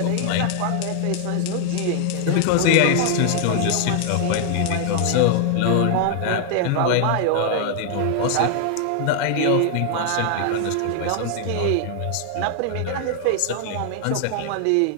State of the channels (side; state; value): both; different; correlation 0.00